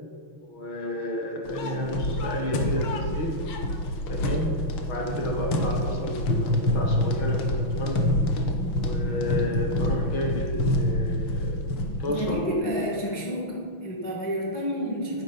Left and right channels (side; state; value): right; late; 6.1 ms